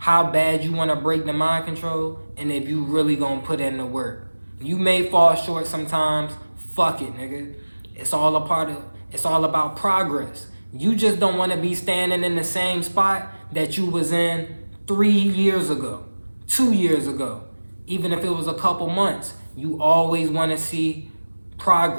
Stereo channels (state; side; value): inverted; both; correlation -1.00